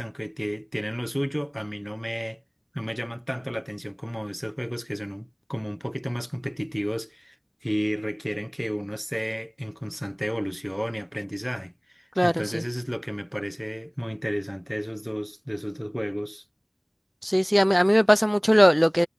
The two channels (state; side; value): identical; both; correlation 1.00